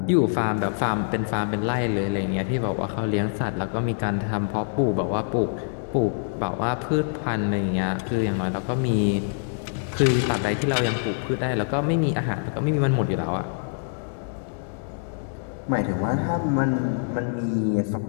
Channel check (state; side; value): silent; right; digital silence